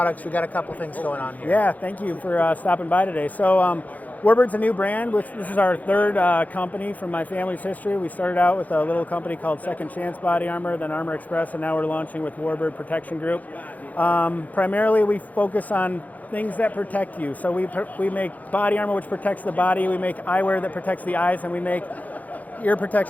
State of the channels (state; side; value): late; right; 0.078 ms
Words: We got a couple things going on here. Yeah, thank you for stopping by today. So Warbird's a new brand. This is our third company from my family's history. We started out with a little company called Second Chance Body Armor, then Armor Express, and now we're launching with Warbird Protection Group. Primarily, we focus on things that protect you. So we make body armor which protects the body, we make eyewear that protects the eyes, and we make ear